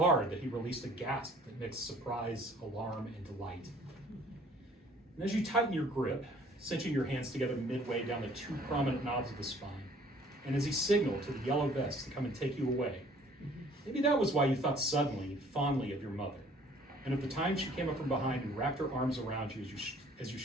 that he released a gasp that mixed surprise, alarm, and delight. And as you tighten your grip, cinching your hands together midway down the two prominent knobs of the spine, and as he signaled to the yellow vest to come and take you away, maybe that was why you thought suddenly, fondly of your mother, and of the time she came up from behind and wrapped her arms around you as you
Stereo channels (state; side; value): normal; both; correlation 0.56